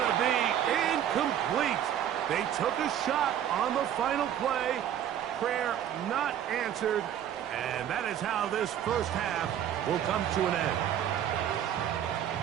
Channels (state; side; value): quieter; left; 10.3 dB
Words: to be incomplete. They took a shot on the final play. Prayer not answered. And that is how this first half will come to an end.